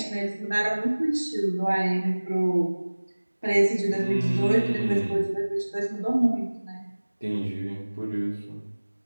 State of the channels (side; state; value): both; inverted; correlation -1.00